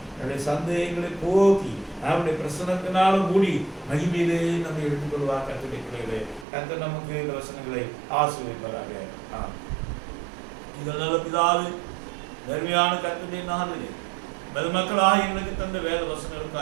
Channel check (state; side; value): drops out; left; at 6.5 s